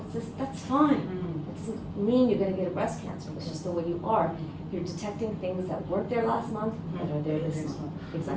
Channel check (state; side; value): identical; both; correlation 1.00